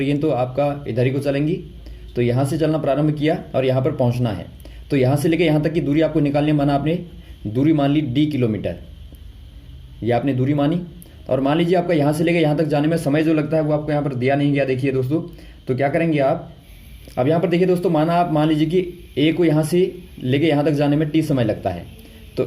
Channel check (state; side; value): identical; both; correlation 1.00